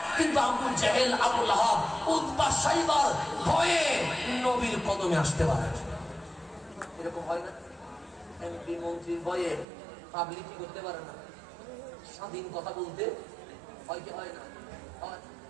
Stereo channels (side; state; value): left; drops out; at 9.7 s